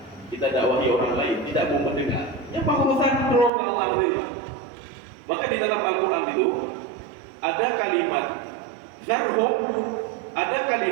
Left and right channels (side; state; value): left; drops out; at 3.5 s